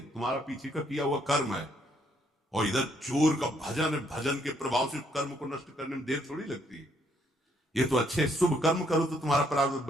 तुम्हारा पीछे का किया हुआ कर्म है। और इधर चोर का भजन है, भजन के प्रभाव से कर्म को नष्ट करने में देर थोड़ी लगती है। ये तो अच्छे शुभ कर्म करो तो तुम्हारा प्रारब्ध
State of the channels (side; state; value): both; normal; correlation 0.70